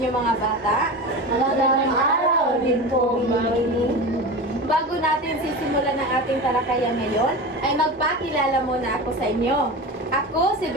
mga bata. Magandang araw din po, Mami. Bago natin sisimulan ang ating talakayan ngayon, ay magpakilala muna ako sa inyo. Ako si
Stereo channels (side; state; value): both; normal; correlation 0.27